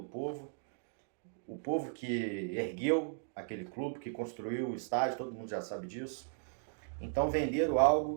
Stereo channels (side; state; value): left; silent; digital silence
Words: povo, o povo que ergueu aquele clube, que construiu o estádio, todo mundo já sabe disso. Então venderam